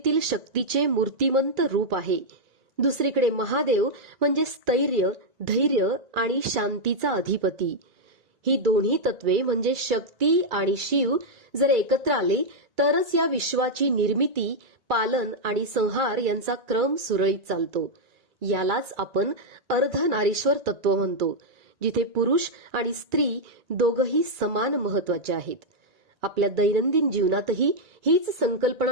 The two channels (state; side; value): late; left; 2.3 ms